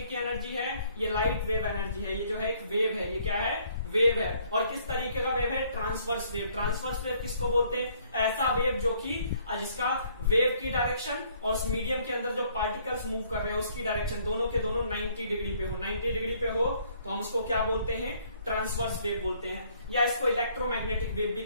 की एनर्जी है? ये लाइट वेव एनर्जी है। ये जो है एक वेव है, ये क्या है? वेव है। और किस तरीके का वेव है? Transverse wave. ट्रांसवर्स वेव किसको बोलते हैं? ऐसा वेव जो कि जिसका वेव की डायरेक्शन और उस मीडियम के अंदर जो पार्टिकल्स मूव कर रहे हैं उसकी डायरेक्शन दोनों के दोनों 90 डिग्री पे हो। 90 डिग्री पे हो तो हम उसको क्या बोलते हैं? ट्रांसवर्स वेव बोलते हैं, या इसको इलेक्ट्रोमैग्नेटिक वेव भी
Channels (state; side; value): inverted; both; correlation -0.63